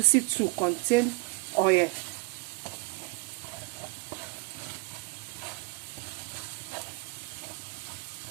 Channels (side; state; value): left; quieter; 25.6 dB